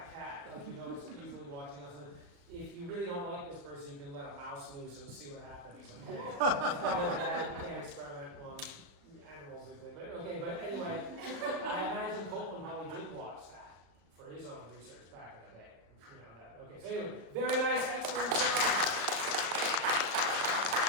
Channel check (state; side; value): late; left; 35 ms